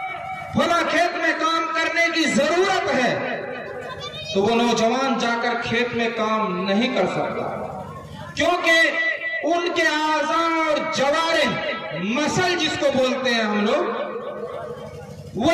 فلاں کھیت میں کام کرنے کی ضرورت ہے، تو وہ نوجوان جا کر کھیت میں کام نہیں کر سکتا، کیونکہ ان کے اعضاء اور جوارح، مسل جس کو بولتے ہیں ہم لوگ، وہ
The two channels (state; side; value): identical; both; correlation 1.00